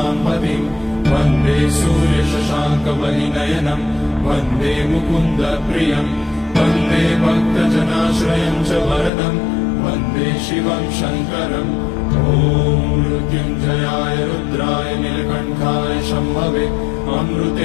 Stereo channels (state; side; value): drops out; right; at 9.1 s